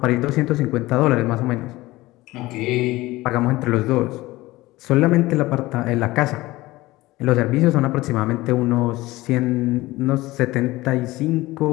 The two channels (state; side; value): quieter; right; 18.9 dB